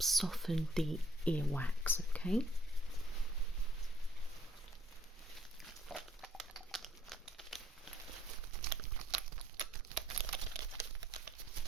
soften the earwax, okay?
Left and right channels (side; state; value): both; normal; correlation 0.64